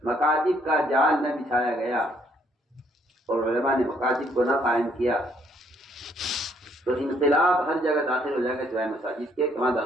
مکاتب کا جال نہ بچھایا گیا اور علماء نے مکاتب کو نہ قائم کیا تو انقلاب ہر جگہ داخل ہو جائے گا سوائے مساجد کے. کہاں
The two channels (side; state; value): both; normal; correlation 0.68